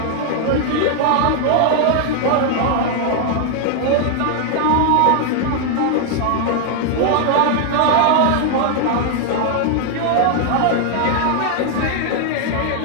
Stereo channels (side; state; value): both; different; correlation 0.00